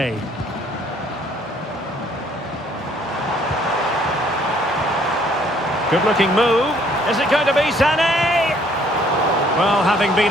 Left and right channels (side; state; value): both; normal; correlation 0.62